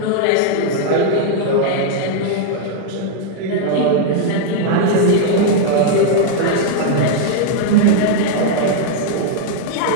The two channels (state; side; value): different; both; correlation 0.00